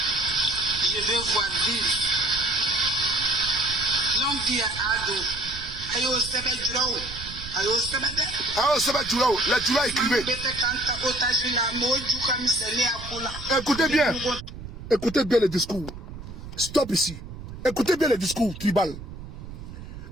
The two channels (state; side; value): noise; right; rumble, 12 dB below the sound